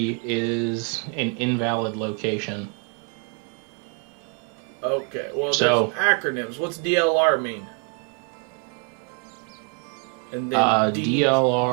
is an invalid location. Okay, well, So- there's acronyms. What's DLR mean? And then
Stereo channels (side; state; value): left; quieter; 37.4 dB